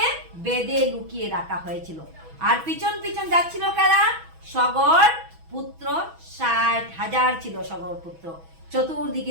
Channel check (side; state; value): left; late; 6.1 ms